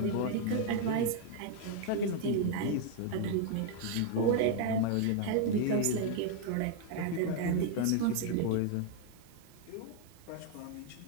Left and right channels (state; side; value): different; both; correlation 0.00